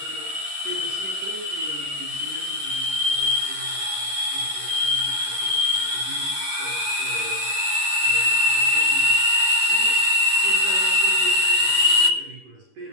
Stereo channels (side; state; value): left; late; 11 ms